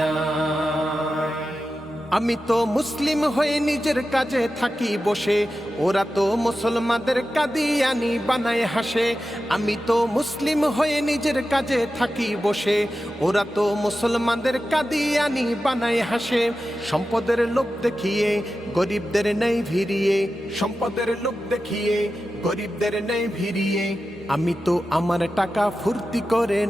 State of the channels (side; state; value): both; normal; correlation 0.92